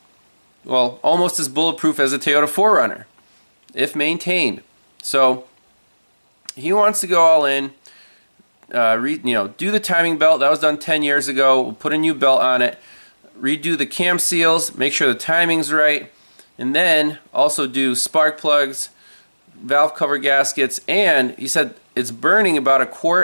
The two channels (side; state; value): both; inverted; correlation -1.00